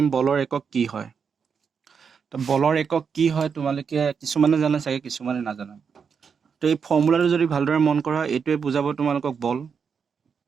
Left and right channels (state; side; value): quieter; left; 6.3 dB